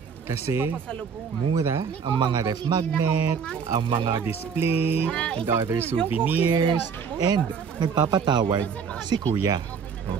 Kasi mura ang mga ref magnet, ang mga display, and other souvenirs, and nagpapatawad si Kuya.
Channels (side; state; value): left; quieter; 6.5 dB